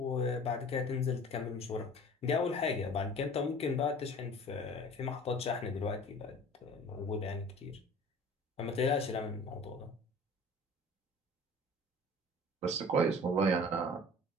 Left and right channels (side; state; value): both; normal; correlation 0.44